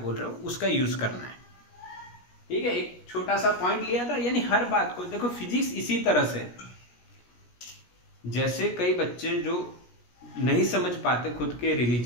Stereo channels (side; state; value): right; late; 17 ms